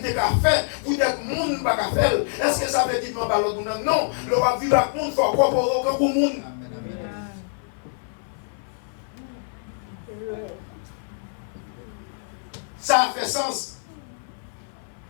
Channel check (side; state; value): right; silent; 57 dB below the other